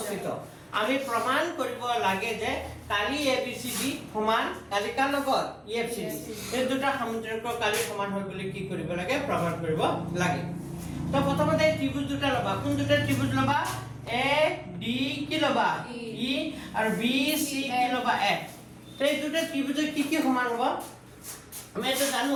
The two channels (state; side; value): identical; both; correlation 1.00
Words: আমি প্ৰমাণ কৰিব লাগে যে কালি এবিসিডি সমান কালি কাৰ লগত ইএফসিডি এই দুটা সামুদ্ৰিকৰ কালি সমান হয় বুলি কি কৰিব লাগে প্ৰমাণ কৰিব লাগে তো প্ৰথমতে ত্ৰিভুজ দুটা লবা কোন দুটা ত্ৰিভুজ লবা এ ডি কি লবা ই আৰু বি সি কি লবা এফ তো এই দুটা ত্ৰিভুজ কি সমান হ'ব আমি এটা